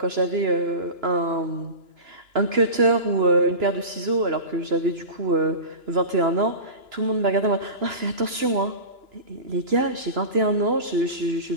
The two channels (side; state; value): left; late; 2.9 ms